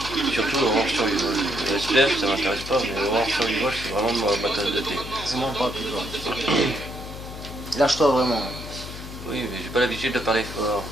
Surtout Horror Survival. Le SPF ça m'intéresse pas, mais Horror Survival c'est vraiment ma tasse de thé. C'est mon pas plus toi. Lâche-toi vraiment. Oui, mais j'ai pas l'habitude de parler fort.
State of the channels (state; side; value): noise; left; hum, 11 dB below the sound